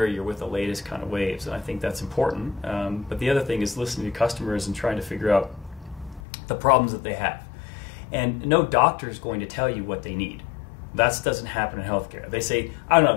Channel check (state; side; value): drops out; right; at 6.2 s